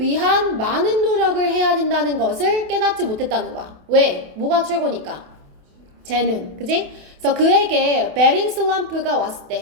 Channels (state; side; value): late; left; 28 ms